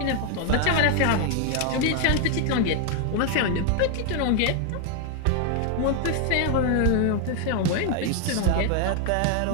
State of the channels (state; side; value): different; both; correlation 0.00